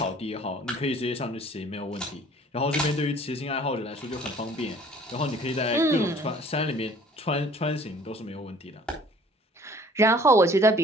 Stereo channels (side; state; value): both; normal; correlation 0.52